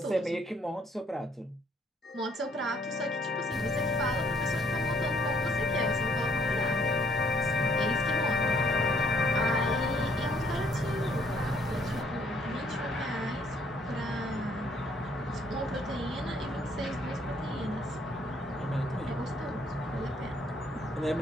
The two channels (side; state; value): both; normal; correlation 0.66